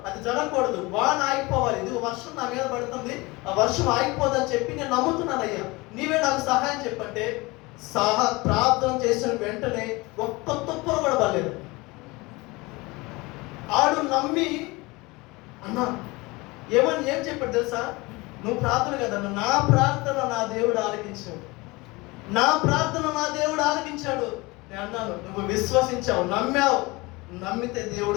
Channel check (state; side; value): quieter; right; 22.9 dB